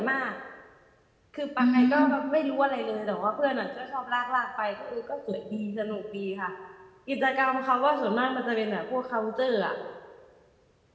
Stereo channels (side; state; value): both; identical; correlation 1.00